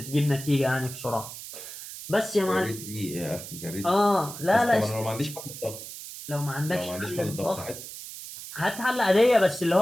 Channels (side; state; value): right; noise; hiss, 11 dB below the sound